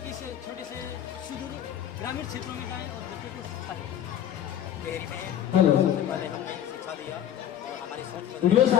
कि इस छोटे से सुदूर ग्रामीण क्षेत्रों में जाएं और बच्चों को शिक्षा दें? हेलो पहले हमने शिक्षा दिया और हमारी सोच वीडियो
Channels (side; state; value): right; quieter; 10.8 dB